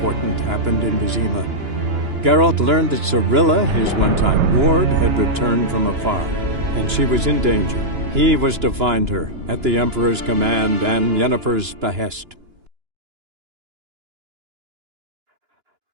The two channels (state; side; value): late; left; 2.9 ms